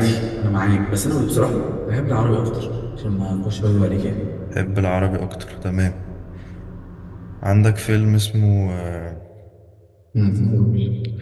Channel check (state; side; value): identical; both; correlation 1.00